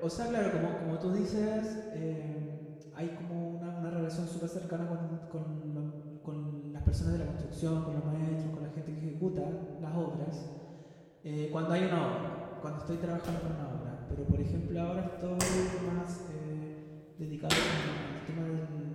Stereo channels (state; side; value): identical; both; correlation 1.00